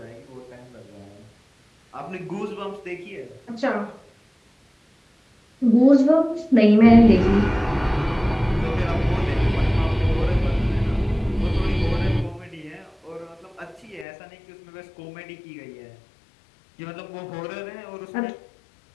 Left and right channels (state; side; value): drops out; right; at 14.1 s